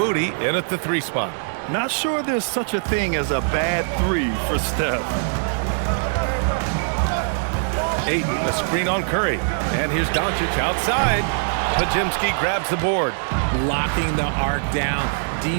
in at the 3 spot. Not sure there's such a thing as a bad 3 for Steph. Ayton, the screen on Curry. And here's Doncic outside. Podziemski grabs the board. Locking the arc down.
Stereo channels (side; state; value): left; silent; digital silence